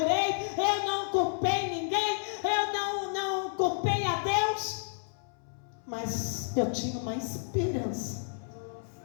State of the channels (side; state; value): right; silent; 57 dB below the other